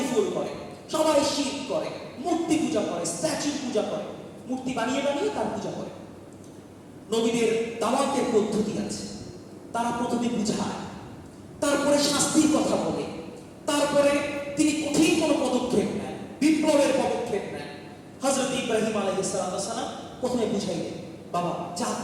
করে সবাই শিরক করে মূর্তি পূজা করে স্ট্যাচু পূজা করে মূর্তি বানিয়ে তার পূজা করে নবীদের দাওয়াতের পদ্ধতি আছে তারা প্রথমে বুঝায় তারপরে শাস্তির কথা বলে তারপরে তিনি কঠিন কোনো পদক্ষেপ নেন বিপ্লবের পদক্ষেপ নেন হযরত ইব্রাহিম আলাইহিস সালাম প্রথমে বুঝাইলেন বাবা যা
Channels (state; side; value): identical; both; correlation 1.00